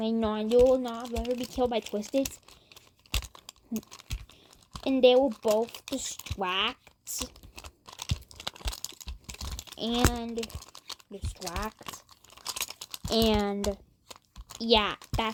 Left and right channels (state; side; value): identical; both; correlation 1.00